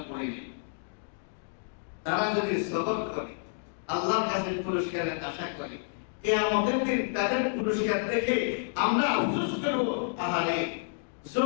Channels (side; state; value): right; silent; digital silence